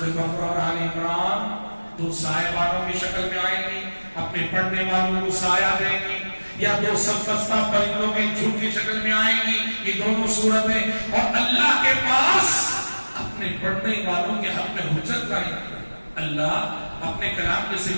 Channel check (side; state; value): both; inverted; correlation -1.00